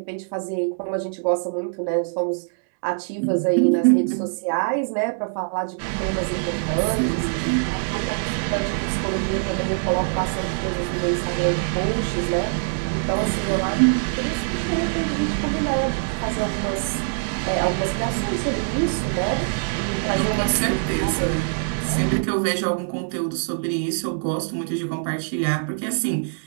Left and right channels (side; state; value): left; silent; digital silence